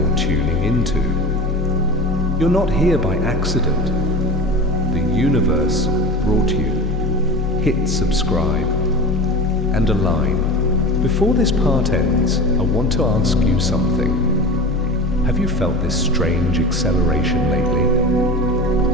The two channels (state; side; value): normal; both; correlation 0.32